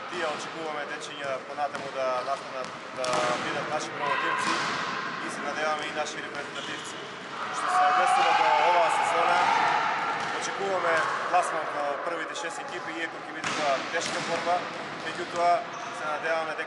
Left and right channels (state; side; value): identical; both; correlation 1.00